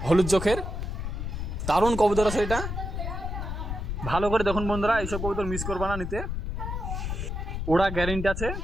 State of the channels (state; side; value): noise; left; rumble, 4 dB below the sound